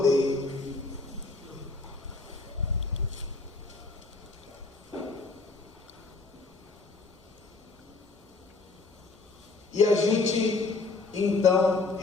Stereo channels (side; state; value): right; quieter; 3.7 dB